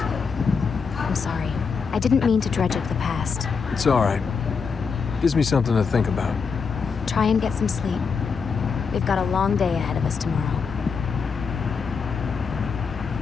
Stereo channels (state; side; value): quieter; right; 5.5 dB